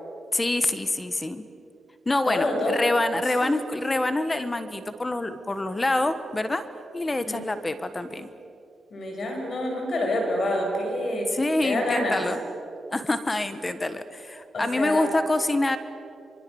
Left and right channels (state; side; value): normal; both; correlation 0.92